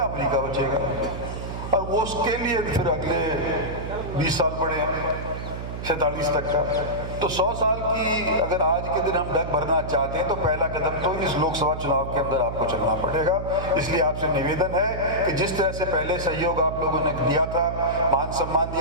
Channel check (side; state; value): right; noise; hum, 7 dB below the sound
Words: अमेरिका बचेगा, और वो उसके लिए फिर अगले 20 साल पड़े हैं 47 तक का। तो 100 साल की अगर आज के दिन हम डग भरना चाहते हैं तो पहला कदम तो इस लोकसभा चुनाव के अंदर आपको चलना पड़ेगा। इसलिए आपसे निवेदन है कि जिस तरह से पहले सहयोग आप लोगों ने दिया था, मान सम्मान